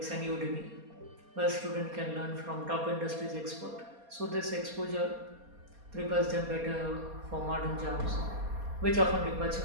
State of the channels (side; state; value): left; late; 4.2 ms